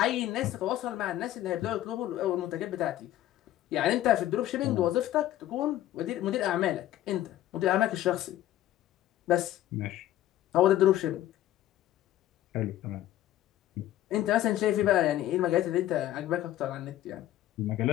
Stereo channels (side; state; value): right; quieter; 13.5 dB